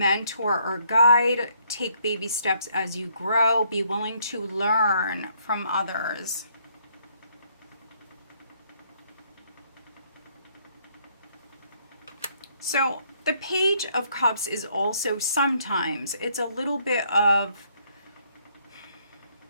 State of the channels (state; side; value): inverted; both; correlation -0.68